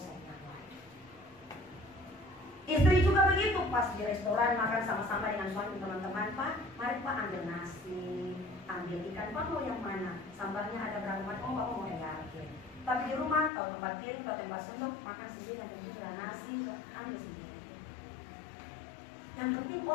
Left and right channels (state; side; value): drops out; right; at 13.5 s